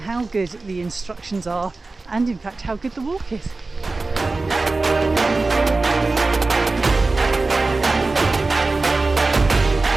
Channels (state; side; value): quieter; left; 3.5 dB